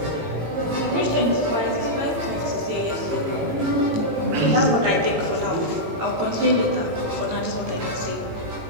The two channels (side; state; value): left; late; 18 ms